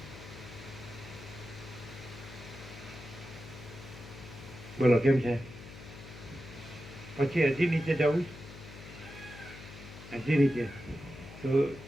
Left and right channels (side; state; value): left; noise; hum, 15 dB below the sound